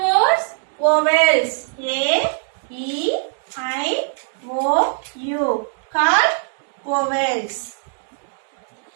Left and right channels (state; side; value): silent; left; digital silence